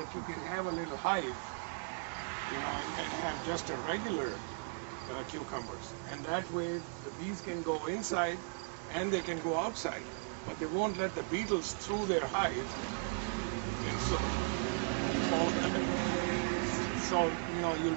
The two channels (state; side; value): silent; left; 53 dB below the other